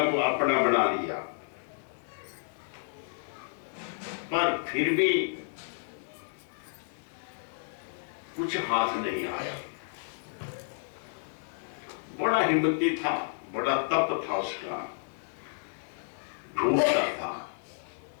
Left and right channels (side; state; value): right; silent; digital silence